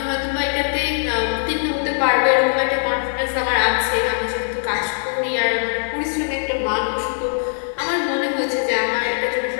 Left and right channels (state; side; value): silent; right; 65 dB below the other